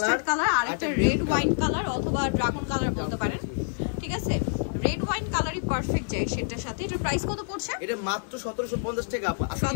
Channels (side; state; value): right; silent; digital silence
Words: কালার, আর একটা রেড ওয়াইন কালার অথবা ড্রাগন কালার বলতে পারেন, ঠিক আছে? রেড ওয়াইন কালারই পারফেক্ট যায় সেটার সাথে। এটার প্রাইস কত পড়ছে? এটা মাত্র 1750 টাকা।